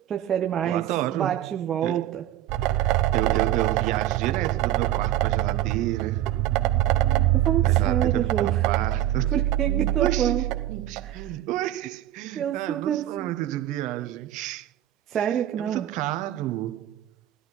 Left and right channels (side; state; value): left; quieter; 12.8 dB